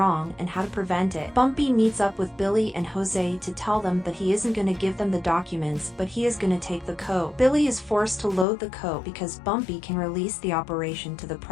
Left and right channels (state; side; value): drops out; right; at 8.5 s